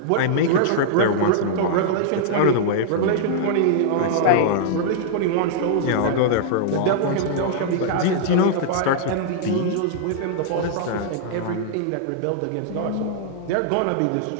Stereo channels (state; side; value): different; both; correlation -0.01